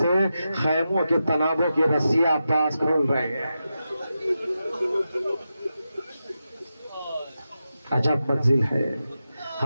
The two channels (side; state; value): both; inverted; correlation -0.90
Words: سے خیموں کے تنابوں کی رسیاں عباس کھول رہے ہیں۔ عجب منزل ہے۔